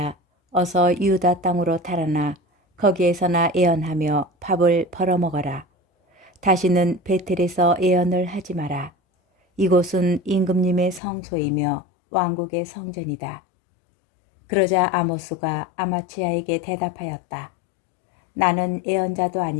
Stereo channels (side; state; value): right; drops out; at 11.0 s